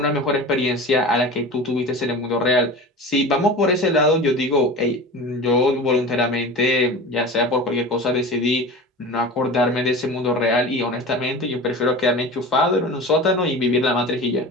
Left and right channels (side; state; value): both; normal; correlation 0.33